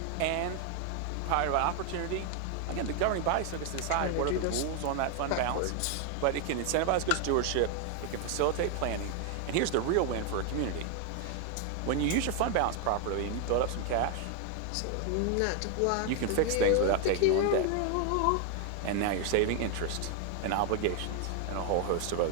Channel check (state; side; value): different; both; correlation 0.01